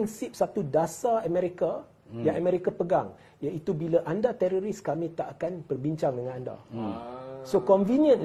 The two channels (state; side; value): identical; both; correlation 1.00